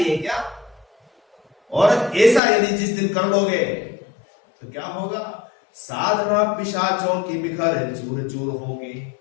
है क्या? और ऐसा यदि जिस दिन कर लोगे तो क्या होगा? साधना पिशाचों की बिखर चूर चूर होगी,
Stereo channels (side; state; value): right; drops out; at 2.4 s